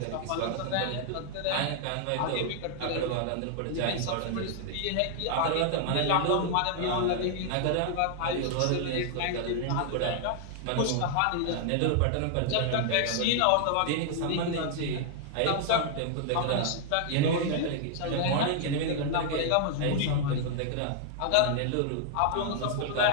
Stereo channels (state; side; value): different; both; correlation -0.01